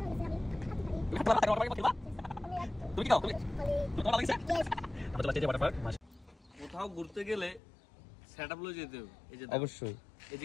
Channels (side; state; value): right; drops out; at 7.6 s